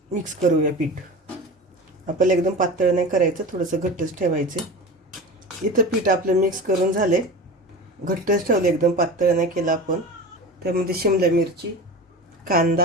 मिक्स करूया पीठ. आपल्याला एकदम पातळ नाही करायचं, थोडंसं घट्टच ठेवायचं. इथं पीठ आपलं मिक्स करून झाले, घट्टच ठेवलं, एकदम पातळ नाही केलं आपण. त्यामध्ये शिमला मिरची,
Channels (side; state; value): both; normal; correlation 0.31